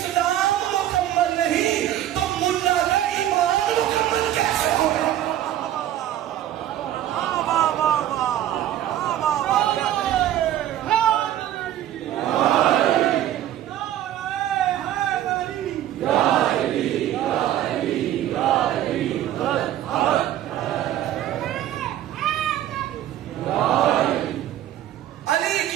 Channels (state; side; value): quieter; left; 12.3 dB